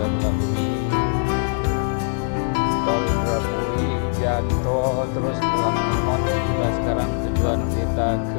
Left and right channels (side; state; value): right; silent; 64 dB below the other